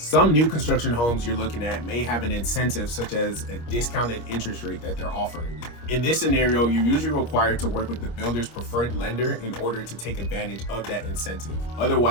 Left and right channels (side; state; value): right; late; 25 ms